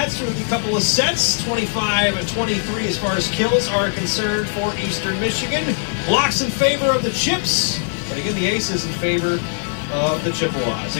through a couple of sets. 25-23 as far as kills are concerned for Eastern Michigan. Blocks in favor of the Chips, but again, the aces in favor of the Chippewas.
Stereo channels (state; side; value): silent; right; digital silence